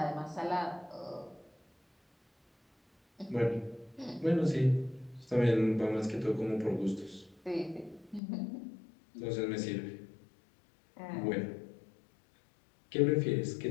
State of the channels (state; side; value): drops out; right; at 8.2 s